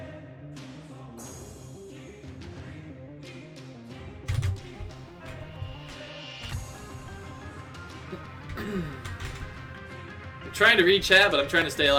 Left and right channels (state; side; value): identical; both; correlation 1.00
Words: trying to read chat, but I'm trying to stay